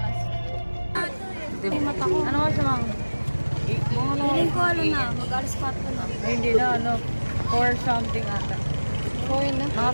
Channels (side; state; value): both; inverted; correlation -1.00